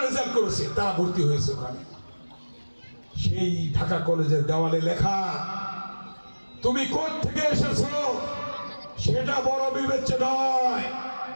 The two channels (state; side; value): inverted; both; correlation -1.00